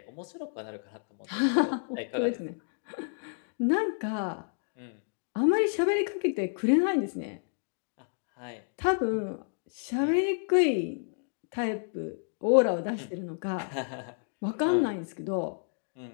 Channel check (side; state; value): right; silent; digital silence